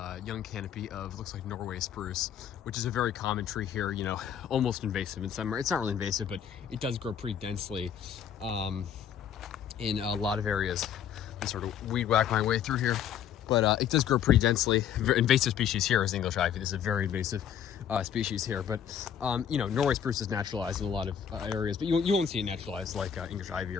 young canopy of, looks like Norway spruce, which is a very common tree here, you know, almost invasive in summer. It's not really invasive, but it does grow pretty densely in a lot of areas. I sort of weed whack my way through here. But it does grow pretty densely. Invasive species here is English ivy. This is a very invasive species here. But, you know, Norway spruce is naturalized in a lot of areas, but you won't see it naturalized like English ivy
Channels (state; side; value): quieter; right; 8.9 dB